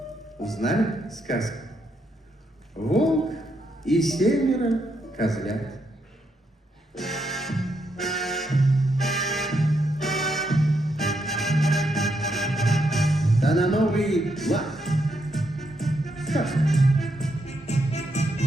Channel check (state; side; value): normal; both; correlation 0.79